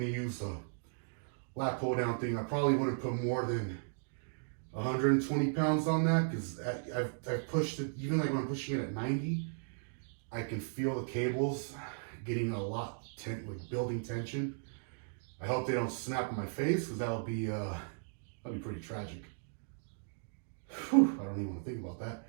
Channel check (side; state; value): left; silent; digital silence